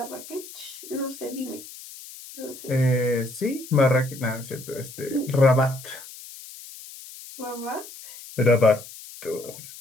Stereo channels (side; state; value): left; noise; hiss, 15 dB below the sound